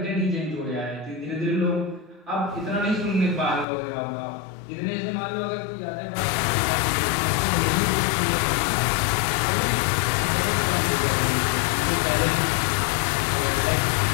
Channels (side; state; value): right; drops out; at 3.7 s